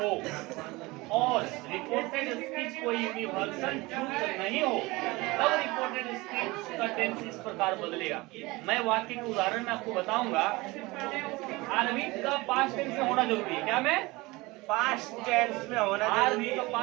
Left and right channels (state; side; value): quieter; left; 22.3 dB